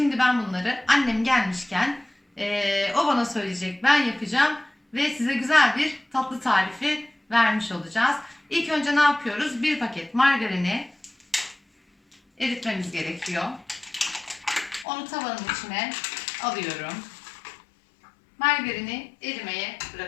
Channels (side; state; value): right; drops out; at 14.9 s